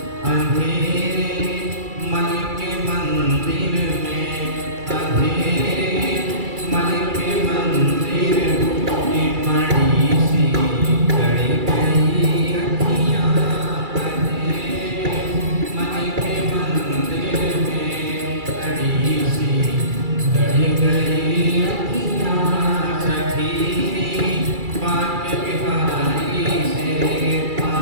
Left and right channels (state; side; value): late; left; 2.3 ms